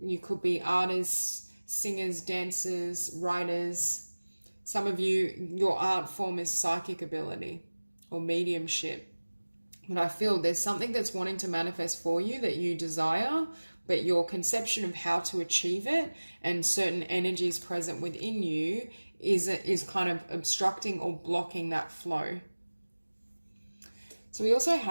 You could be artists, singers, dancers, writers. Some of you, your art form is psychic ability or mediumship. But I feel there's something that's wanting to manifest for you that you desire, but your conception of how to achieve it and certain energies present within you is kind of obstructing or blocking that flow. So we also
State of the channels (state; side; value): inverted; both; correlation -1.00